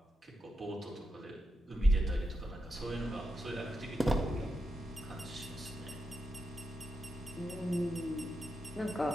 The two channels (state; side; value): normal; both; correlation 0.86